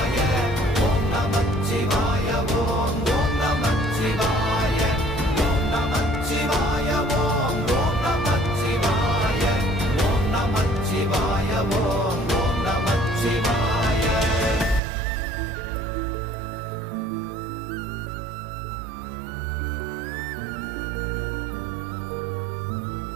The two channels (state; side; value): drops out; left; at 14.8 s